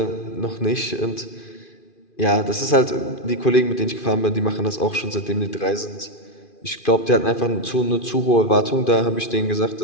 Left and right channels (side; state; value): right; late; 2.5 ms